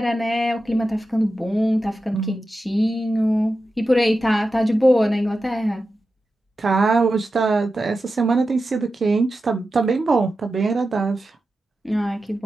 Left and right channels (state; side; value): normal; both; correlation 0.92